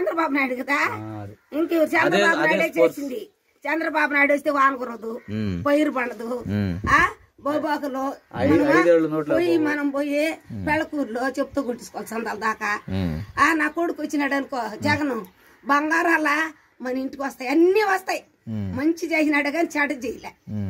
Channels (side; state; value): both; identical; correlation 1.00